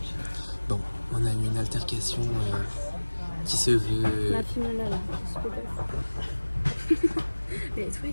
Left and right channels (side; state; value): both; inverted; correlation -1.00